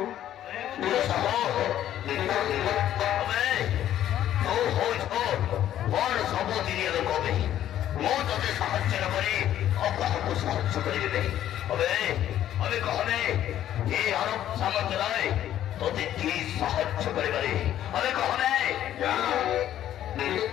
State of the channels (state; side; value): quieter; right; 11.7 dB